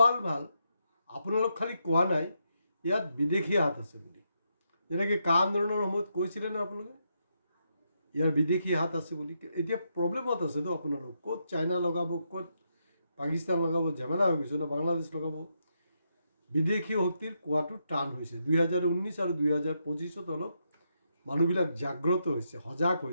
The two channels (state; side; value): inverted; both; correlation -0.81